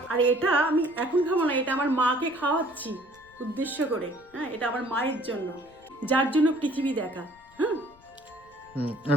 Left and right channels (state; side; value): noise; left; rumble, 28 dB below the sound